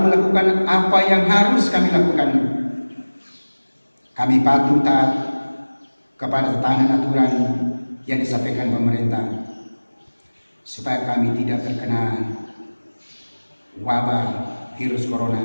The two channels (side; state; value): both; inverted; correlation -1.00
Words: apa yang harus kami lakukan. Kami patuh taat kepada tatanan aturan yang disampaikan pemerintah, supaya kami tidak terkena wabah virus corona.